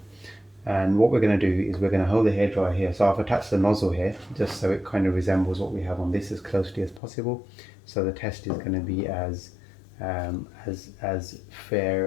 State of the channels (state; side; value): drops out; right; at 7.0 s